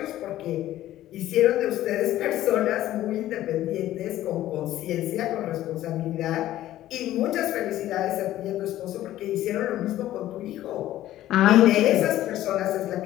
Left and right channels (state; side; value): quieter; right; 13.9 dB